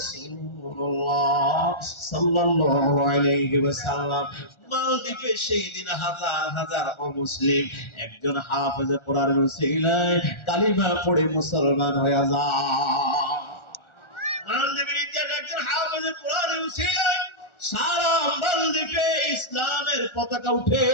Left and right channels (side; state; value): right; late; 1.4 ms